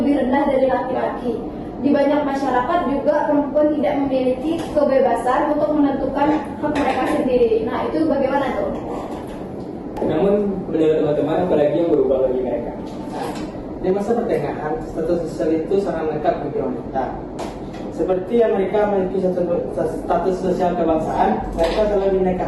rendah dari laki-laki. Di banyak masyarakat juga perempuan tidak memiliki kebebasan untuk menentukan hak mereka sendiri. Nah, itu bagaimana tuh? Namun menurut teman-teman, apalagi yang berubah bagi mereka? Di masa pertengahan, status sosial itu sangat lengkap bagi wanita. Seperti yang mereka memiliki status sosial kebangsaan, mereka selalu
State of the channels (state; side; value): identical; both; correlation 1.00